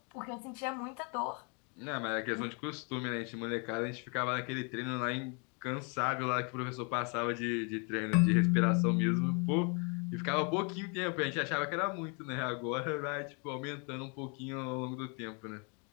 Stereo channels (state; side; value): quieter; right; 35.2 dB